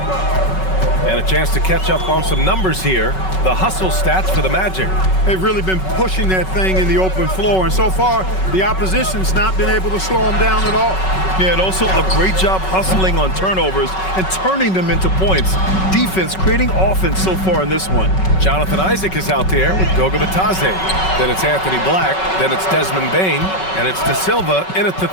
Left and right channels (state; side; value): late; right; 5.3 ms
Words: And a chance to catch up on some numbers here. The hustle stats for the Magic. They've really been pushing that thing in the open floor, and so far, the opposition's not been able to slow them down at all. Yeah, and also a great job hustling on turnovers and turning them into points. Defense creating offense so far in this one. Jonathan Isaac is out there with Goga Bitadze. Then it's Anthony Black. Then it's Desmond Bane. And it's De Silva in at the